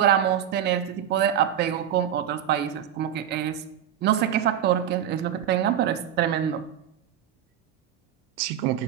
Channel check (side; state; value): left; quieter; 10.0 dB